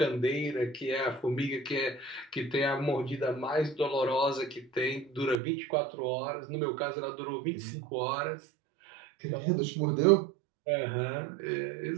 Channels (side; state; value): left; drops out; at 5.4 s